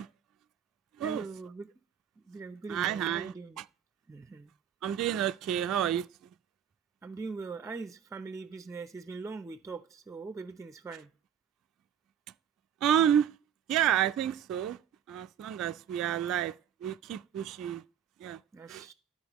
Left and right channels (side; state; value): left; quieter; 9.1 dB